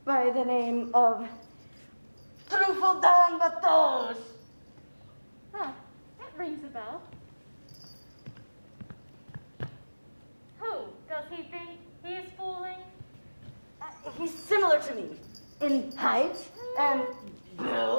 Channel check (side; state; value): both; inverted; correlation -1.00